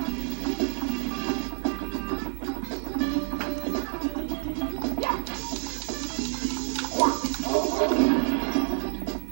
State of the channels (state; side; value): silent; left; digital silence